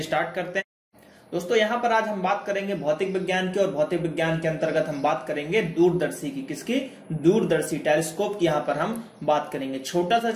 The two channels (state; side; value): identical; both; correlation 1.00